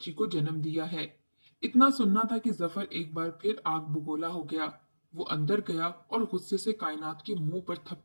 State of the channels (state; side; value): inverted; both; correlation -1.00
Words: को जन्म दिया है। इतना सुनना था कि जफर एक बार फिर आग बबूला हो गया। वो अंदर गया और गुस्से से कायनात के मुंह पर